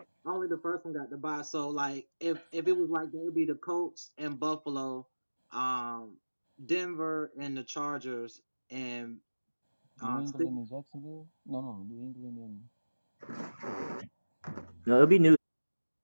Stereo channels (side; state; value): both; inverted; correlation -1.00